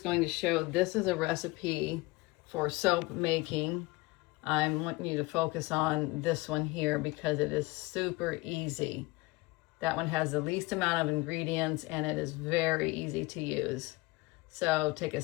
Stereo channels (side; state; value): right; quieter; 22.7 dB